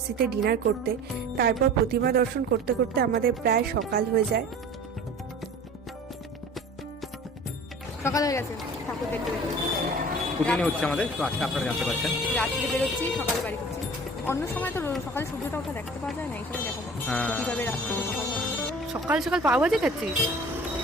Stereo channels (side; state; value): both; normal; correlation 0.42